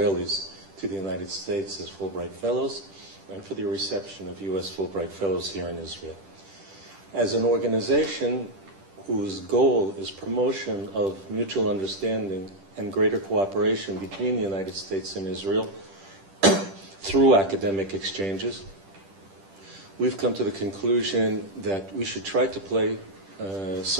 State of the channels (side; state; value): left; late; 10 ms